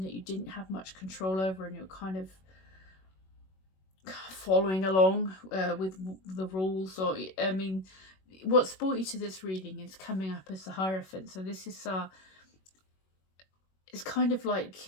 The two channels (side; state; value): right; late; 21 ms